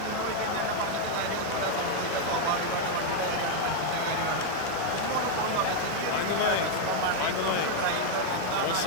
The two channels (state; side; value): different; both; correlation 0.00